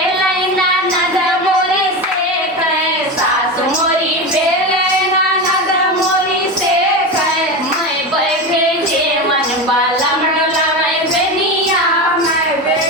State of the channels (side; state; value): both; normal; correlation 0.21